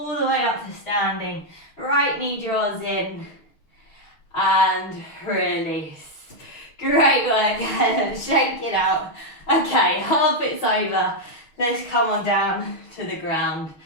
the way up to standing. Right knee draws in. And release. Great work. Shake it out. Okay, half it's over. Let's come on down to the ground.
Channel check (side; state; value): right; late; 6.4 ms